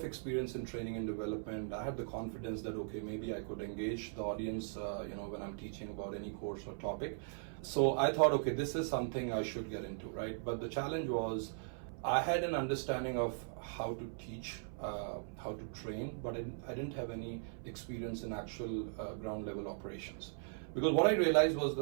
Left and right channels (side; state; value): left; silent; 52 dB below the other